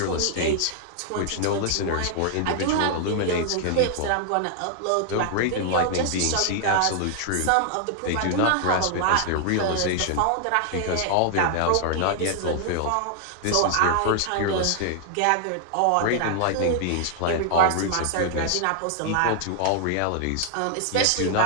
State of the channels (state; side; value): different; both; correlation 0.00